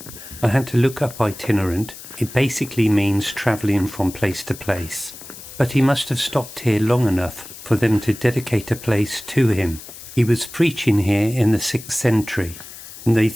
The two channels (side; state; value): left; noise; hiss, 15 dB below the sound